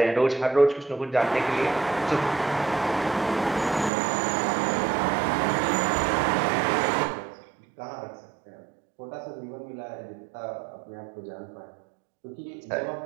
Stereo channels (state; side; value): drops out; left; at 3.9 s